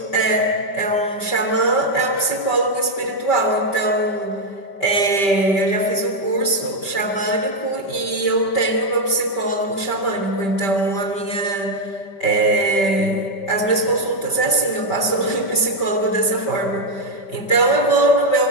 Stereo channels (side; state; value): right; late; 5.2 ms